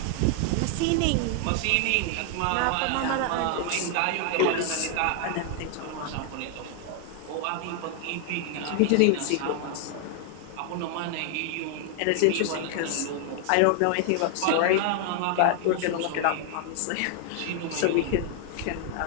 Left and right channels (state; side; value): different; both; correlation 0.00